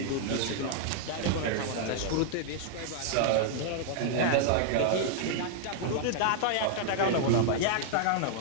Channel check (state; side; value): different; both; correlation -0.01